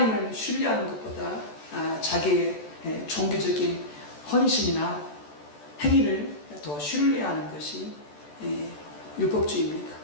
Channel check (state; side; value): late; right; 14 ms